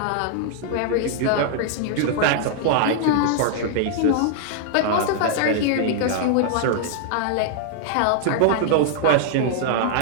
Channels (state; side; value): different; both; correlation -0.01